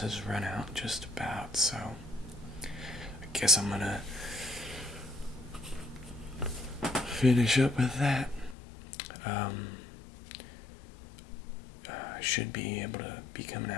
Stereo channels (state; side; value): drops out; right; at 8.6 s